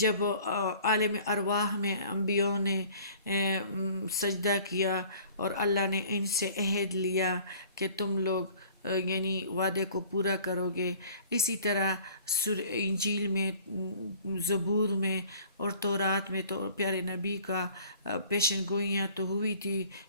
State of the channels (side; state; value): both; inverted; correlation -0.51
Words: جب عالم ارواح میں انبیاء نے سجدہ کیا اور اللہ نے ان سے عہد لیا کہ تم لوگ یعنی وعدے کو پورا کرو گے، اسی طرح انجیل میں، زبور میں اور تورات میں تو پیارے نبی کا پیشن گوئیاں تو ہوئی تھی۔